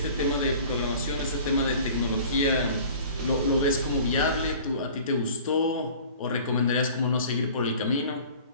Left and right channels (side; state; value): both; inverted; correlation -0.45